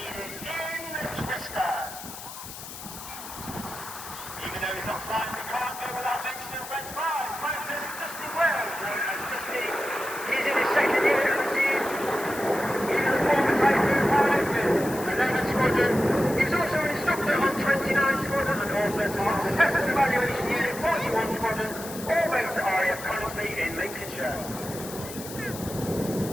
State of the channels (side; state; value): left; noise; hiss, 12 dB below the sound